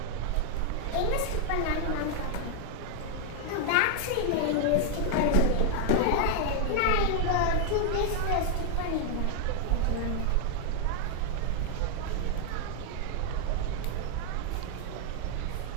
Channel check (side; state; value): both; different; correlation 0.00